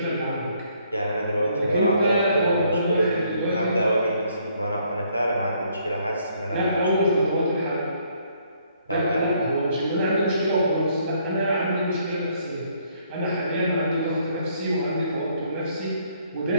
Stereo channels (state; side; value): inverted; both; correlation -0.67